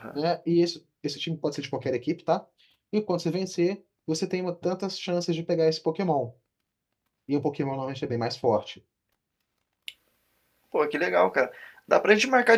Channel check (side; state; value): both; identical; correlation 1.00